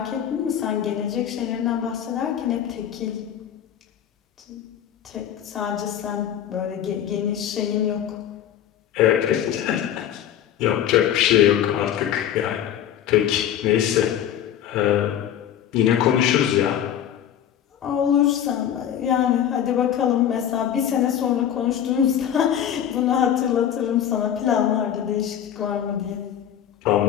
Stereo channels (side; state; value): right; quieter; 10.1 dB